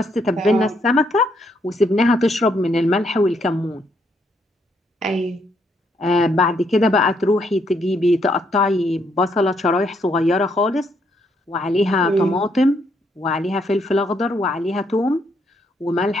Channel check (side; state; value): both; normal; correlation 0.73